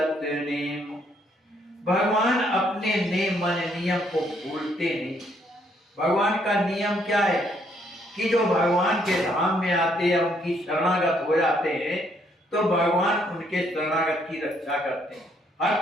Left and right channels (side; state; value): both; normal; correlation 0.70